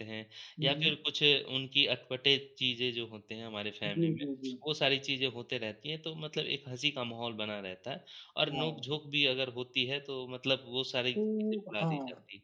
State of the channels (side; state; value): both; identical; correlation 1.00